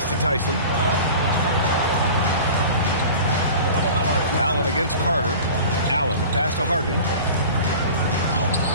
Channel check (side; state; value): both; inverted; correlation -0.38